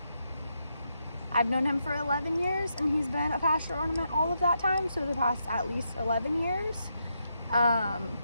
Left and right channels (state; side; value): inverted; both; correlation -0.82